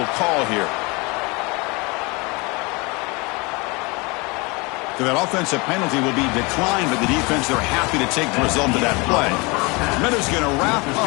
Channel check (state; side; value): quieter; right; 27.2 dB